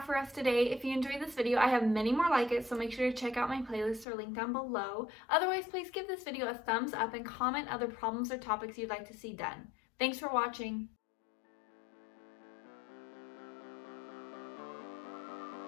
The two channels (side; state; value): right; drops out; at 4.0 s